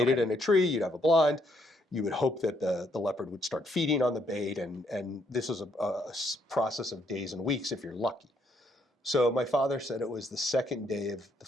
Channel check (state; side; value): normal; both; correlation 0.72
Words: it in a tree, you'd have a blind, you would hope that the leopard would start feeding on the bait, and this is a process of days and weeks if you're lucky. So my father said it was the second day of the